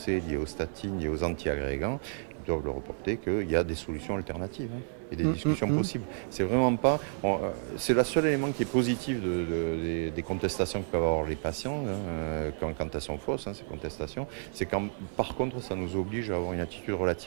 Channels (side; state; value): left; silent; 57 dB below the other